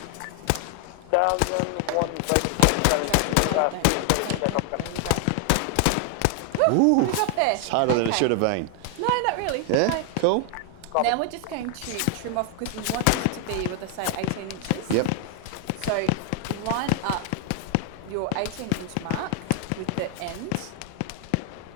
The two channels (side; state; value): both; different; correlation 0.00